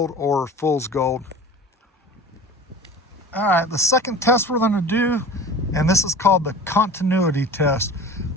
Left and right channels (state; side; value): normal; both; correlation 0.39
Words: or fool's gold. All right, the second test we're going to do, and this is called the continuity test.